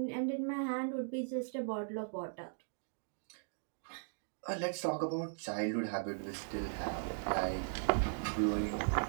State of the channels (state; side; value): silent; left; digital silence